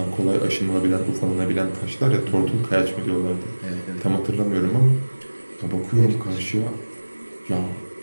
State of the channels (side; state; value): both; inverted; correlation -1.00